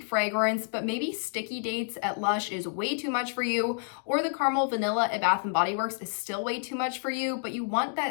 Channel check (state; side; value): silent; right; digital silence